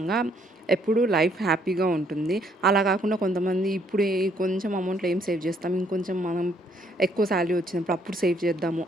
ఎప్పుడూ లైఫ్ హ్యాపీగా ఉంటుంది. అలా కాకుండా కొంతమంది ఇప్పుడు ఈ కొంచెం అమౌంట్‌లో ఏం సేవ్ చేస్తాం, ఇంకొంచెం మనం ఎక్కువ సాలరీ వచ్చినప్పుడు అప్పుడు సేవ్ చేద్దాము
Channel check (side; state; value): both; normal; correlation 0.67